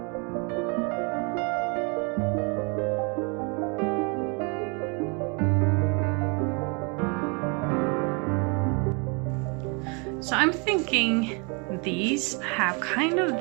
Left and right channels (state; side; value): quieter; left; 32.9 dB